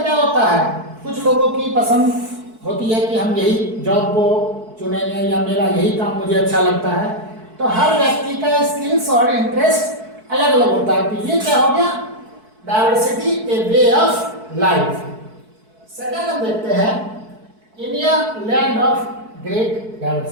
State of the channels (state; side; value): late; left; 4.6 ms